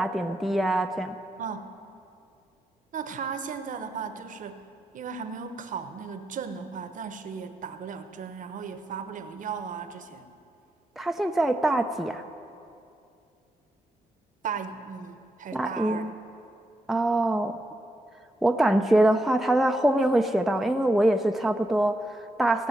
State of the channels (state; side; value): normal; both; correlation 0.84